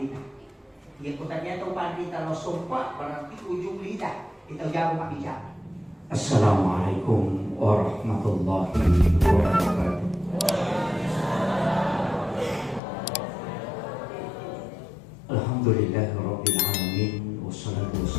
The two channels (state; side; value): drops out; right; at 12.8 s